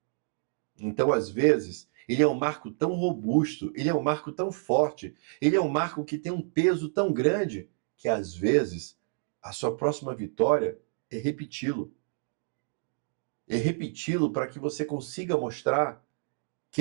Então, às vezes, ele é um marco tão robusto, ele é um marco tão forte, ele é um marco que tem um peso tão grande, que às vezes a sua próxima vitória é repeti-lo. e repeti-lo para que você consiga mostrar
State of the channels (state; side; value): silent; left; digital silence